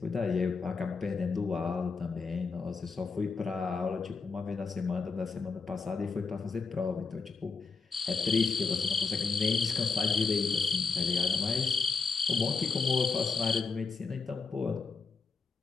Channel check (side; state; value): right; quieter; 4.6 dB